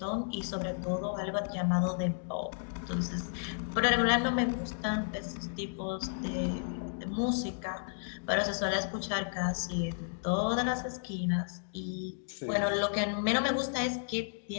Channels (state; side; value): silent; right; digital silence